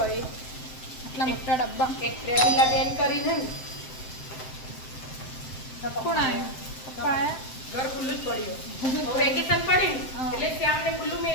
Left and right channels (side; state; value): right; late; 7.7 ms